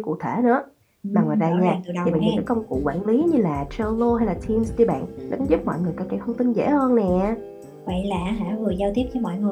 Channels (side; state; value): both; identical; correlation 1.00